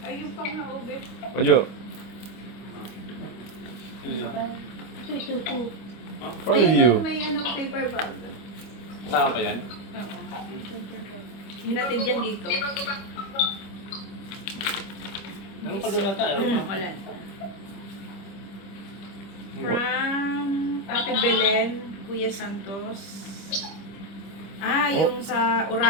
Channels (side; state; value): right; late; 25 ms